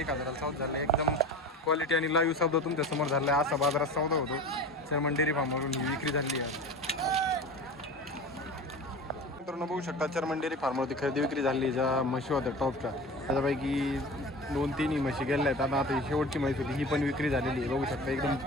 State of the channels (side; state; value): both; normal; correlation 0.34